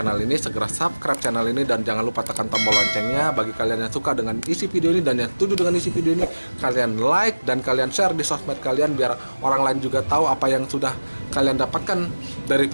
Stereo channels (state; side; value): inverted; both; correlation -1.00